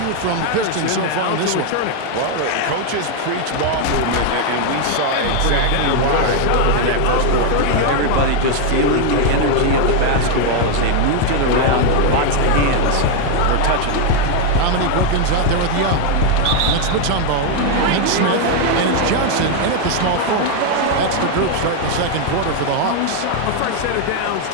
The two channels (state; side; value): different; both; correlation 0.01